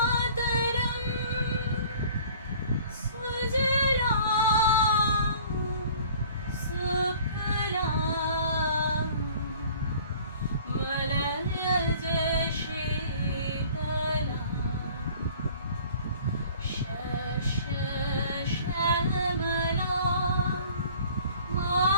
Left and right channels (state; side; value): inverted; both; correlation -0.50